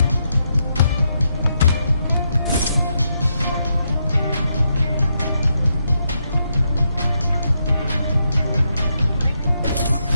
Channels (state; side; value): inverted; both; correlation -0.81